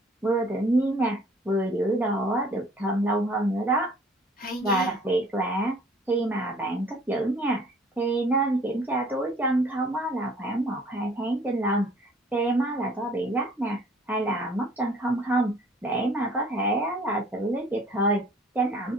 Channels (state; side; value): normal; both; correlation 0.54